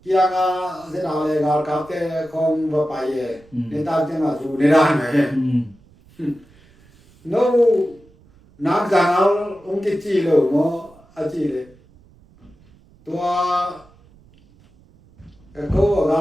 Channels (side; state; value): right; noise; rumble, 28 dB below the sound